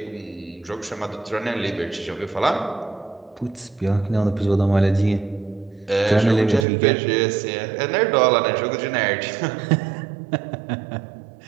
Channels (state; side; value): drops out; left; at 6.7 s